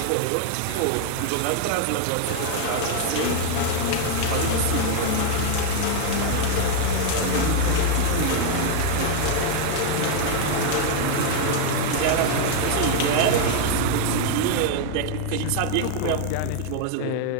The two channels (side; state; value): both; different; correlation 0.00